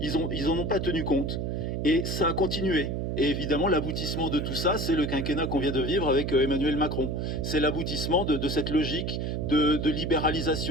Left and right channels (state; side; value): noise; right; hum, 2 dB below the sound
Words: Ils en ont pas tenu compte. Et ça a continué. Et évidemment, l'aboutissement de tout ça, c'est le quinquennat qu'on vient de vivre avec Emmanuel Macron. C'est l'aboutissement de cette logique de